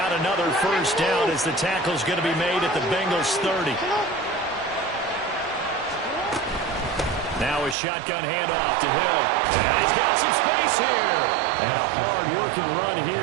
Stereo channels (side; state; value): left; drops out; at 7.8 s